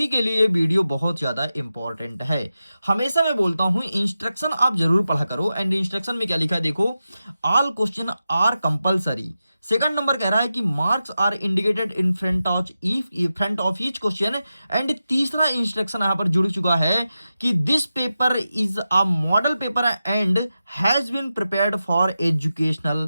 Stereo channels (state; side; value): inverted; both; correlation -0.91